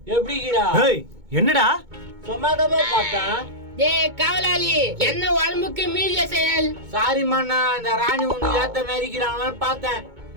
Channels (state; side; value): late; left; 2.2 ms